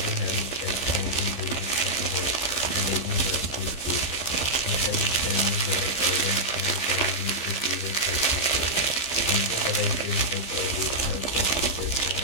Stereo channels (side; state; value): right; late; 15 ms